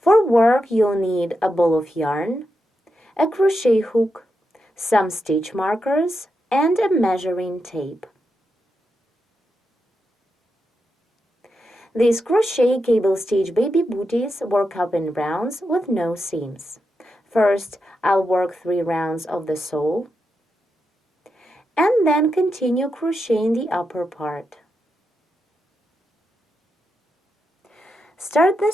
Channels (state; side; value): normal; both; correlation 0.86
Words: work, you'll need a ball of yarn, a crochet hook, some stitch markers, and a measuring tape. These crochet cable stitch baby booties work up in rounds with no seams. First, I'll work 3 rounds of the sole, and then continue crocheting the upper part. Start the